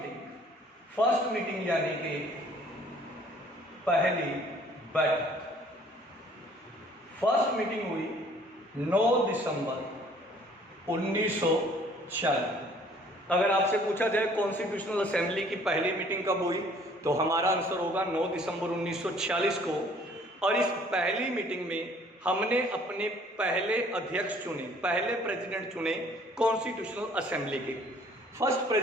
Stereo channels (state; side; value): normal; both; correlation 0.57